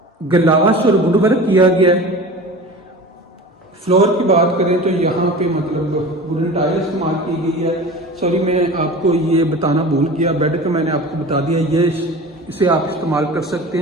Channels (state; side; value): normal; both; correlation 0.36